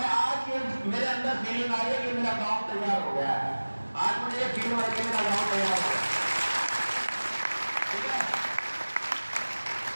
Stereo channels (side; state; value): both; inverted; correlation -1.00